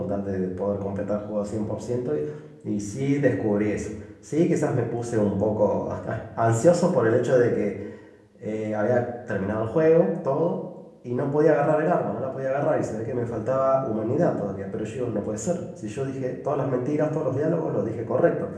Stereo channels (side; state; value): both; identical; correlation 1.00